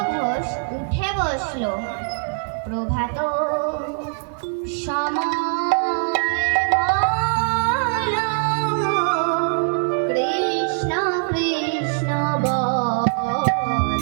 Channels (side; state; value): left; silent; 64 dB below the other